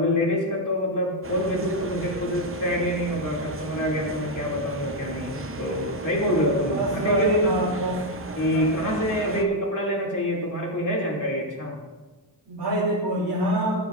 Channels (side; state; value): both; normal; correlation 0.03